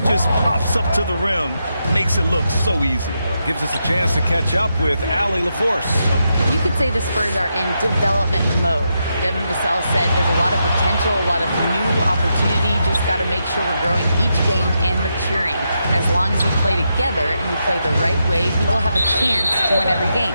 pops up to the rim, makes it look so easy. Gives us a chance to catch up with Allie LaForce. You could say the Spurs are in development mode. Devin Vassell said there's a lot of potential, a lot of new opportunity. Just got to make sure we're growing each game and maturing. As long as we play together and we play the right way, we will have a chance to win every game.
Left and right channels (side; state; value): both; inverted; correlation -0.84